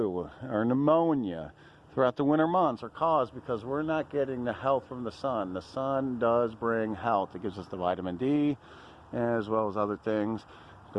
our pneumonia throughout the winter months are caused because we're not getting the health from the sun. The sun does bring health. It gives us the vitamin D as well as other things,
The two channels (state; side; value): identical; both; correlation 1.00